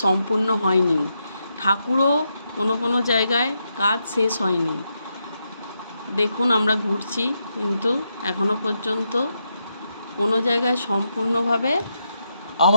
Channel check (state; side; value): inverted; both; correlation -0.83